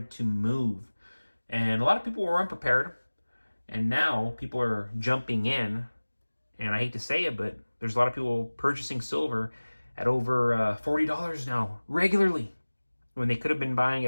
to move. And a lot of people were unprepared, and now people are jumping in, and I hate to say it, but there's a lot of people purchasing silver at over $40 now, regularly, when they could have been buying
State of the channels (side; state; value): both; inverted; correlation -1.00